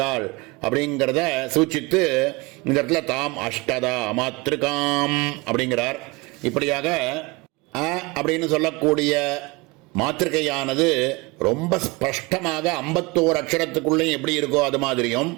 அப்படிங்கிறத சூச்சித்து இந்த இடத்துல தாம் அஷ்டதா மாத்திருக்காம் அப்படிங்கிறார். இப்படியாக அப்படின்னு சொல்லக்கூடிய மாத்திருக்கையானது ரொம்ப ஸ்பஷ்டமாக 51 அக்ஷரத்துக்குள்ளே எப்படி இருக்கோ அது மாதிரியும்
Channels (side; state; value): left; quieter; 24.8 dB